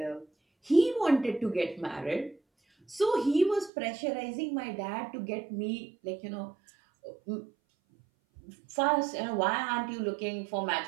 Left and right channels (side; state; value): left; drops out; at 3.7 s